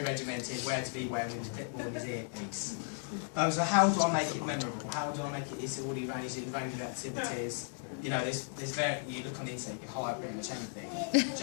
regimented, where to be when, with his clipboard and his earpiece. So how do I make it memorable? How do I make it? It's already arranged in range of activities. You know, there's you look on the internet, you can hire pretty much anything.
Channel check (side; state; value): right; silent; 54 dB below the other